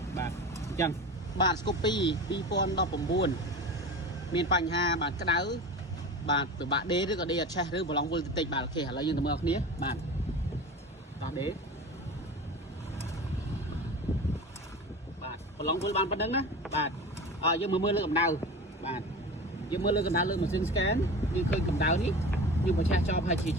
បាទអញ្ចឹងបាទស្គប់2019មានបញ្ហាបាទក្តៅបាទពិបាកដេរឬក៏ដេរអត់ឆេះឬប្រឡងវល់តិចបាទអូខេឥឡូវយើងទៅមើលគ្នាបាទតោះដេរបាទប្រឡងវល់បានប៉ុណ្្នឹងណាបាទយើងមើលលើកម្ដៅបាទយើងមើលលើកម្ដៅលើម៉ាស៊ីន scan យើងឃើញកម្ដៅនេះយើងបញ្ឆេះចោលហើយជា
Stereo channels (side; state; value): both; normal; correlation 0.32